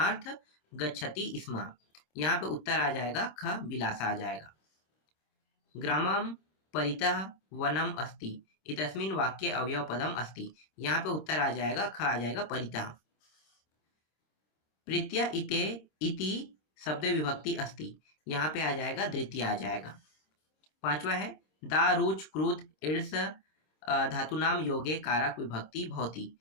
गच्छति स्म, यहाँ पे उत्तर आ जाएगा ख विलासा आ जाएगा। ग्रामं परितः वनम अस्ति इतस्मिन् वाक्ये अवयवपदम अस्ति, यहाँ पे उत्तर आ जाएगा ख आ जाएगा परितः। प्रीत्या इते इति शब्द विभक्ति अस्ति, यहाँ पे आ जाएगा द्वितीय आ जाएगा। पांचवा है दा रुच क्रुद्ध ईर्ष धातु नाम योगे कारक विभक्ति भवति,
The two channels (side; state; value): right; late; 26 ms